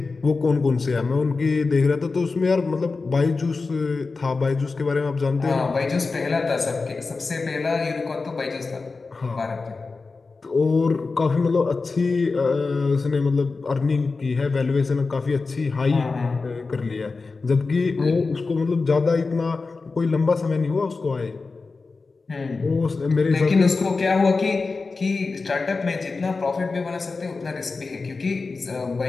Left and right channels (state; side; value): quieter; right; 4.1 dB